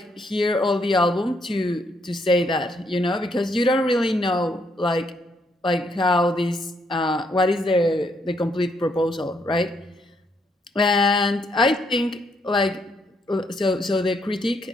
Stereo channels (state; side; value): normal; both; correlation 0.73